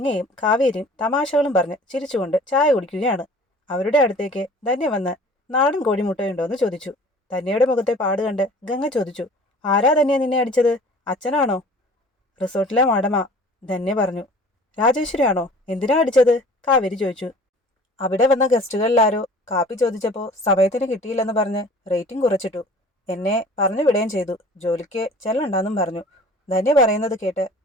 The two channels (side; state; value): both; normal; correlation 0.46